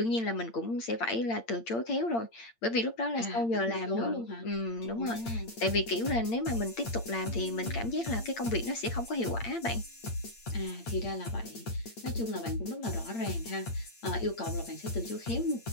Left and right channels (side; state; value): right; late; 8.7 ms